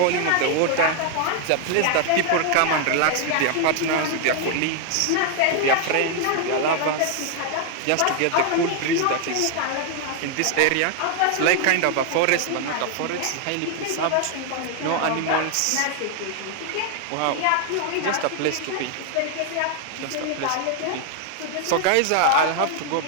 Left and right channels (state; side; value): different; both; correlation 0.00